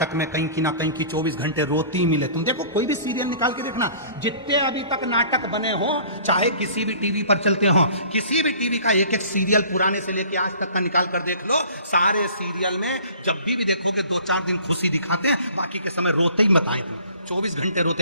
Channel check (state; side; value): inverted; both; correlation -0.49